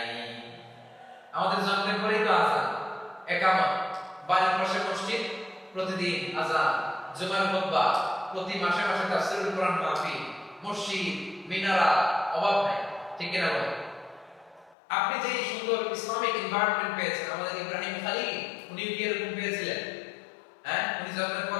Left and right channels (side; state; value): right; drops out; at 14.8 s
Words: আমাদের জন্মের পরেই তো আযান, একামত, বাড়ির পাশে মসজিদ, প্রতিদিন আযান, জুমার খুতবা, প্রতি মাসে মাসে তাফসীরুল কোরআন মাহফিল, মসজিদ, মিনারা, অভাব নাই, ঠিক কিনা বলেন? আপনি যে সুন্দর ইসলামিক এনভায়রনমেন্ট পেয়েছেন, আমাদের ইব্রাহিম খলিল উনি কি এরকম পেয়েছিলেন? হ্যাঁ, উনি জন্মের